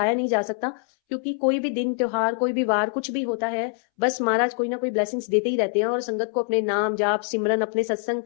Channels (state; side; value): silent; right; 62 dB below the other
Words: नहीं जा सकता, क्योंकि कोई भी दिन त्योहार, कोई भी वार, कुछ भी होता है, बस महाराज कोई ना कोई ब्लेसिंग्स देते ही रहते हैं, और संगत को अपने नाम जाप सिमरन, अपने सत्संग,